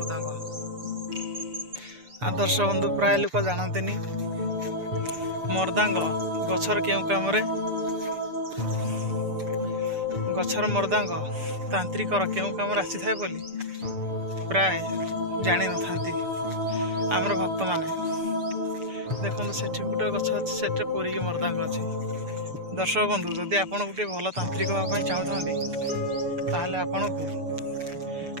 आदर्श बंधु प्राय लोक जानतेनी मर्दांग गछर केउ काम रे गछर मर्दांग तांत्रिकर केउ काम आसी थाए बोली प्राय जानी न थांती आमर भक्त माने देखो से गोटे गछ अच्छे से पूरी मर्दांग अच्छे दर्शक बंधु जदि आपड़ गोटे भल तांत्रिक हाँपाई चाहूँ ताहले आपन को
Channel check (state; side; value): late; left; 6.8 ms